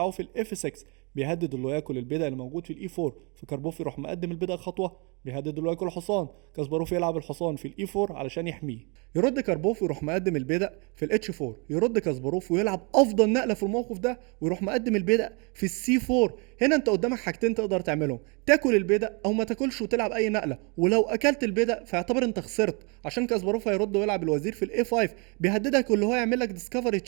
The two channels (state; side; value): quieter; left; 32.4 dB